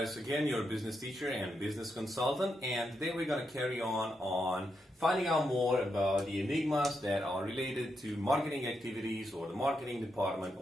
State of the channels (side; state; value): both; normal; correlation 0.83